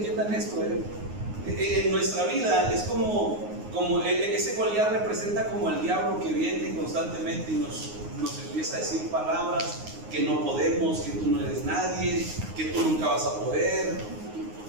esto, en nuestra vida es como ese Goliat representa como el diablo que viene constantemente y nos empieza a decir palabras que no podemos, que tú no eres nadie, que tú nunca vas a poder.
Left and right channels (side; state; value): left; late; 9.6 ms